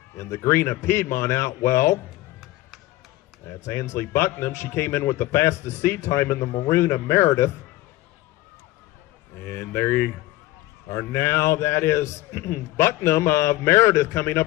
in the green of Piedmont out well. That's Ansley Bucknam. She came in with the fastest seed time in the maroon of Meredith. And there you are now. That is Bucknam of Meredith coming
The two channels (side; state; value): right; quieter; 17.3 dB